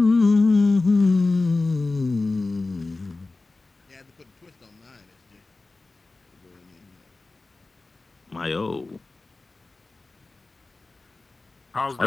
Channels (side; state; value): right; quieter; 3.4 dB